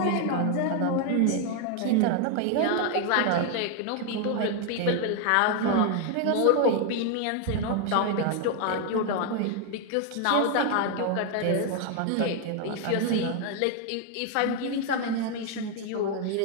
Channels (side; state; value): both; different; correlation 0.01